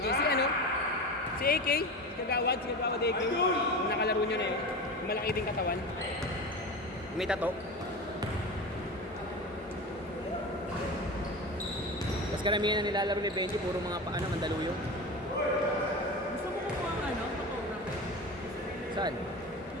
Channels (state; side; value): normal; both; correlation 0.27